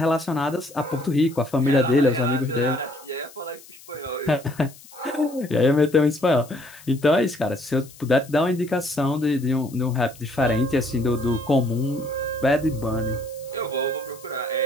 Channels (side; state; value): left; noise; hiss, 21 dB below the sound